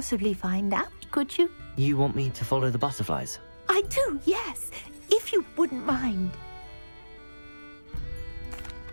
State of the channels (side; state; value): both; inverted; correlation -1.00